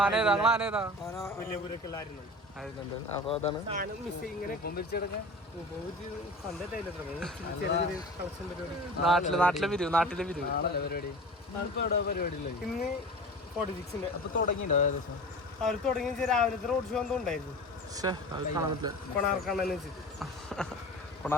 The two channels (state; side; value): normal; both; correlation 0.36